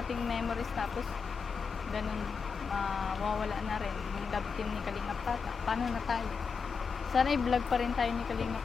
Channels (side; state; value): right; quieter; 5.6 dB